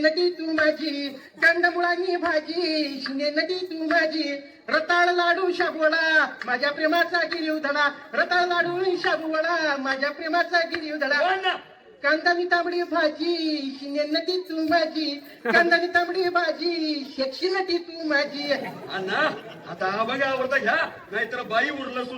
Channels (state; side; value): identical; both; correlation 1.00